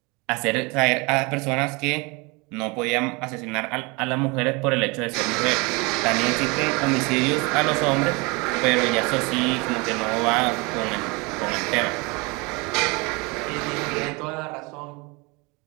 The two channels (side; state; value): left; quieter; 27.5 dB